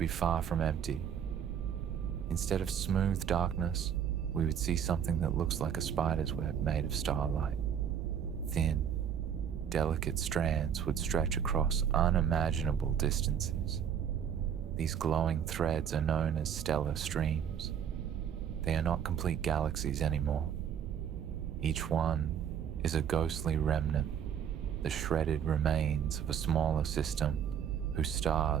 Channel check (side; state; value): left; quieter; 8.4 dB